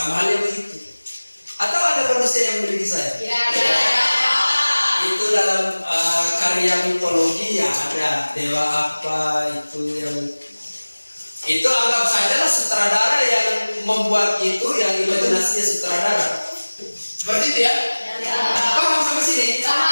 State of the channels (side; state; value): both; inverted; correlation -1.00